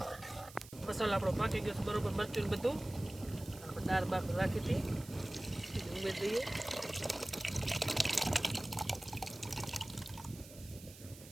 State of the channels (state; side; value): noise; right; hiss, 18 dB below the sound